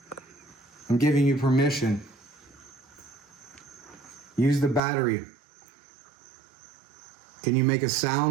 I'm giving you permission. Use the battery. Can you make a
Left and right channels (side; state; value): left; drops out; at 4.8 s